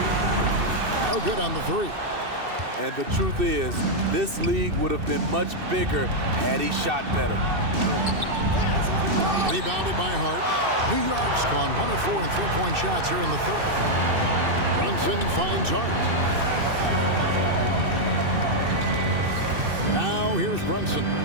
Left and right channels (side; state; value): left; late; 2.6 ms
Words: No good on the 3. And the truth is, this league would have been much bigger had he shot better. Rebounded by Hart. New York's gone 1 of 4 in three-point shots here in the third. Brunson finds Hart. Now here's Brunson.